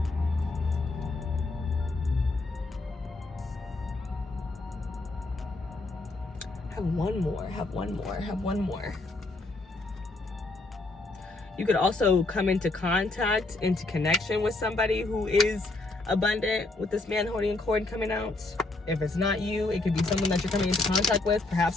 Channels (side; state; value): right; quieter; 3.1 dB